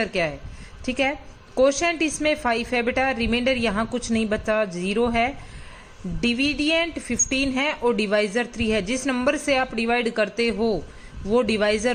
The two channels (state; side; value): identical; both; correlation 1.00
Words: क्या है। ठीक है, कोशेंट इसमें 5 है बेटा, रिमाइंडर यहाँ कुछ नहीं बचा, 0 है। डिविडेंड 15 है और डिवाइजर 3 है। जिस नंबर से आप डिवाइड करते हो वो डिवाइजर